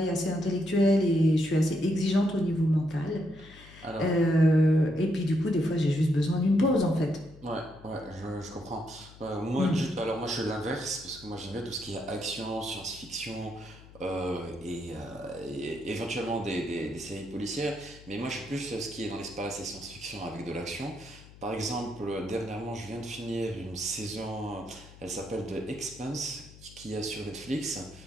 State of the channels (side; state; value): left; noise; hum, 20 dB below the sound